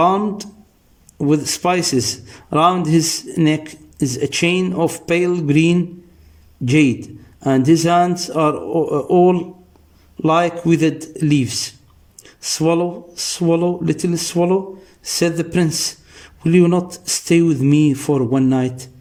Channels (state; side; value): identical; both; correlation 1.00